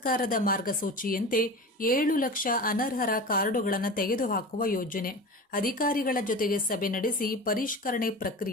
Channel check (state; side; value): normal; both; correlation 0.31